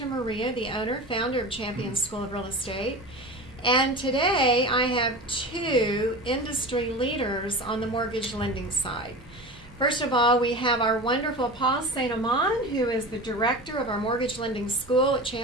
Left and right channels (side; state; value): both; normal; correlation 0.31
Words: the owner, founder of Champion School of Real Estate. And today I have two industry leaders on the mortgage lending side. First of all, we have our wonderful Paul St. Amand, who is the director of our mortgage lending school at